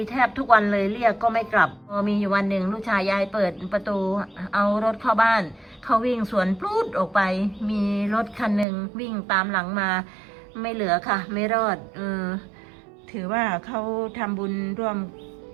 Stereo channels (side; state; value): left; drops out; at 8.7 s